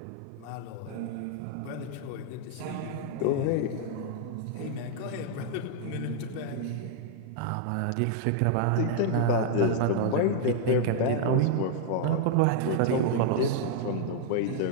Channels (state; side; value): different; both; correlation -0.01